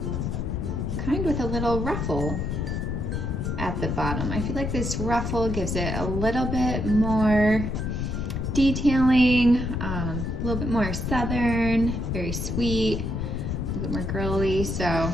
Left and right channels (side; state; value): left; noise; rumble, 2 dB below the sound